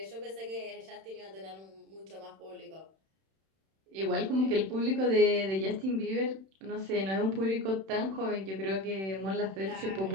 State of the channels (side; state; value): left; late; 31 ms